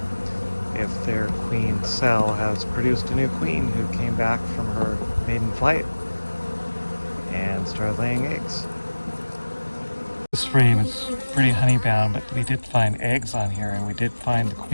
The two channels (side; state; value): both; inverted; correlation -1.00